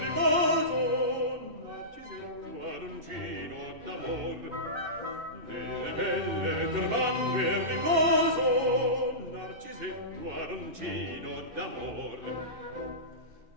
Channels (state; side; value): late; left; 2.5 ms